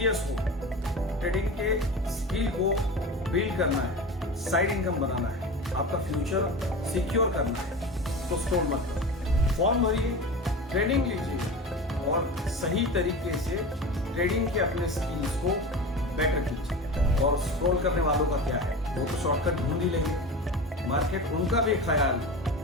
हो, ट्रेडिंग के स्किल को बिल्ड करना है, साइड इनकम बनाना है, आपका फ्यूचर सिक्योर करना है, तो स्टॉल मत करो। फॉर्म भरिए, ट्रेनिंग लीजिए और सही तरीके से ट्रेडिंग के अपने स्किल्स को बेटर कीजिए। और स्क्रॉल करने वालों का क्या है, वो तो शॉर्टकट ढूंढ ही लेंगे, मार्केट उनका भी ख्याल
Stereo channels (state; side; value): normal; both; correlation 0.30